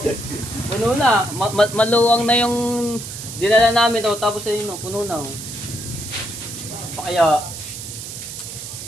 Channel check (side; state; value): right; noise; hiss, 9 dB below the sound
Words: Puno na. Maluwang na yung dinala namin, oh. Tapos ayun, oh, puno na, oh. Pa kaya